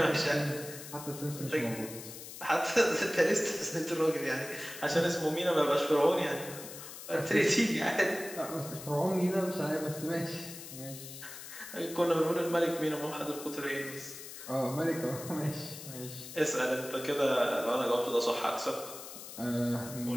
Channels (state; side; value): noise; left; hiss, 12 dB below the sound